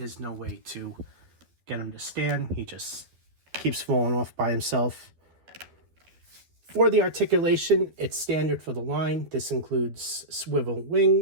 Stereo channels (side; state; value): left; late; 12 ms